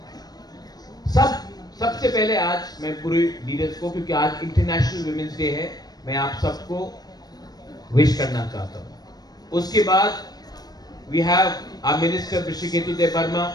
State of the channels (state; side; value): late; right; 0.19 ms